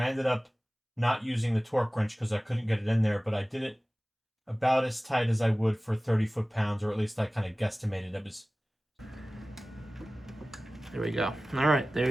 ended up not using the torque wrench because I couldn't get it in there, but I did it about as tight as I would for 30 foot-pounds, or at least I kind of guesstimated it was. There we go. All right, there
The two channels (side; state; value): both; normal; correlation 0.97